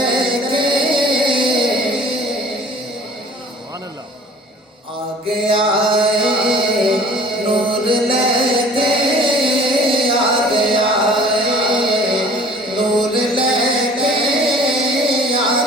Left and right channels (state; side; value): normal; both; correlation 0.48